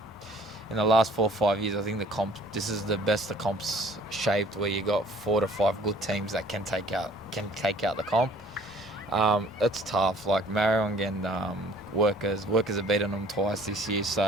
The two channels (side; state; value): both; normal; correlation 0.54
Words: in the last 4 or 5 years, I think this is the best the comp's shaped, where you got 4 to 5 good teams that can take out the comp. It's tough. Like Marion and Workers have beaten them twice this year.